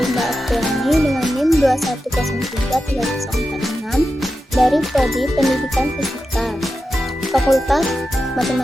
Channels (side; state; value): both; normal; correlation 0.90